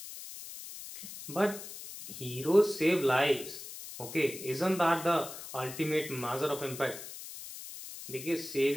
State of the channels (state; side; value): noise; left; hiss, 12 dB below the sound